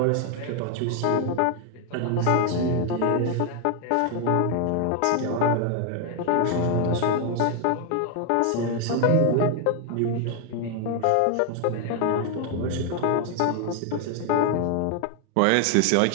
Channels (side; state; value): both; different; correlation 0.00